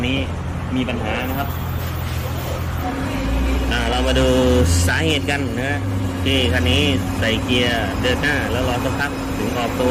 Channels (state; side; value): identical; both; correlation 1.00